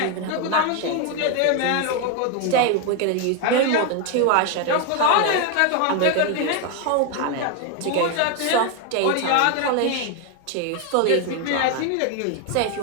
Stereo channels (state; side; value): different; both; correlation 0.01